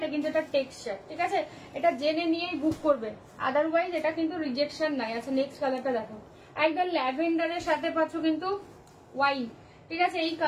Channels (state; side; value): identical; both; correlation 1.00